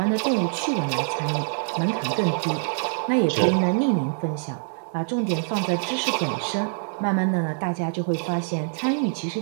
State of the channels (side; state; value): left; silent; digital silence